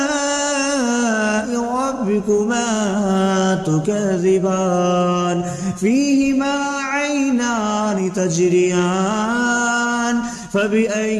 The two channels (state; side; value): identical; both; correlation 1.00